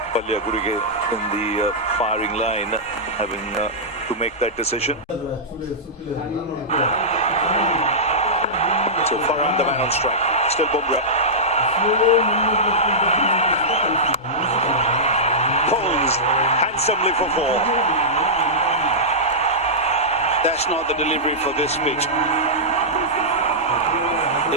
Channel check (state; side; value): normal; both; correlation -0.13